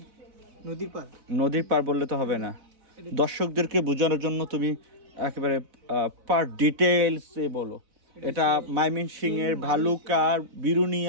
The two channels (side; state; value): left; late; 4.0 ms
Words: নদীর পার নদীর পার বললে তো হবে না, দর্শকদেরকে বোঝানোর জন্য তুমি একেবারে পার ডিটেলস এ বলো। এটা ময়মনসিংহ এর ভালুকার